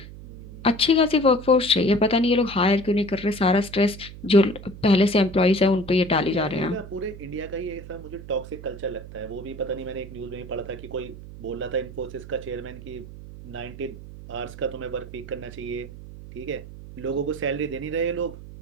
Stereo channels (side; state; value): right; noise; hum, 14 dB below the sound